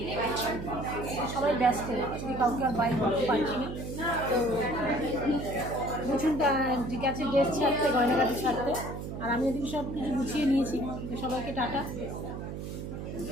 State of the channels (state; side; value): noise; right; hum, 7 dB below the sound